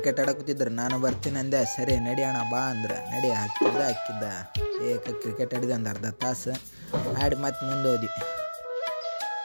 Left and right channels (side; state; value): both; inverted; correlation -1.00